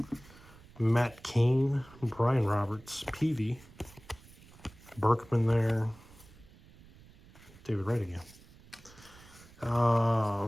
Matt Cain, Brian Roberts, Peavy, Berkman there, David Wright again.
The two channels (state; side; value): noise; right; rumble, 23 dB below the sound